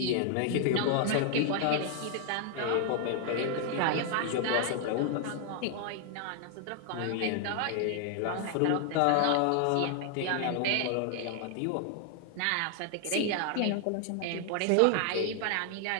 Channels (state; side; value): different; both; correlation 0.00